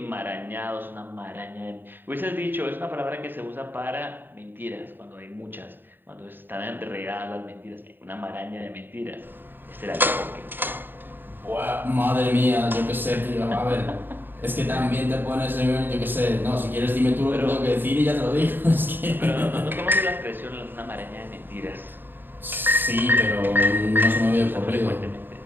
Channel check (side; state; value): left; late; 0.095 ms